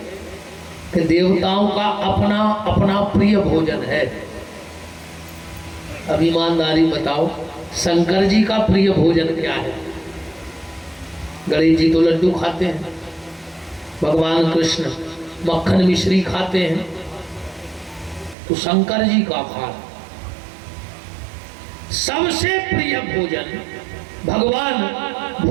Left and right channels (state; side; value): drops out; left; at 18.4 s